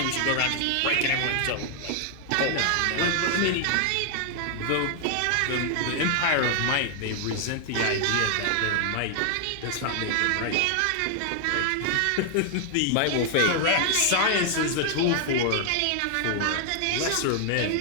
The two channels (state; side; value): different; both; correlation 0.00